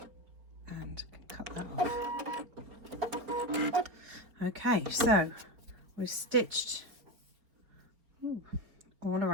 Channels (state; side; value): late; left; 4.5 ms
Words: and cut that off. Okay, so we've stitched all